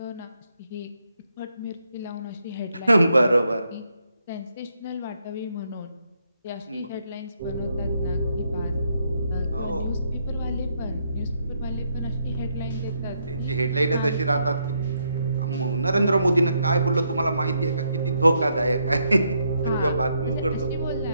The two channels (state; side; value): inverted; both; correlation -0.76